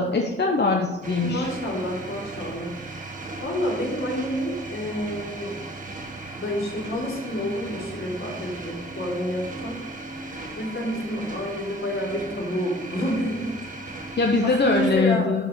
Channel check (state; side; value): normal; both; correlation 0.47